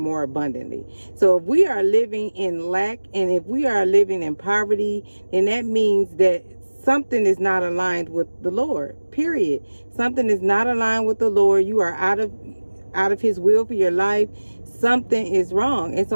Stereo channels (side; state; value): both; inverted; correlation -1.00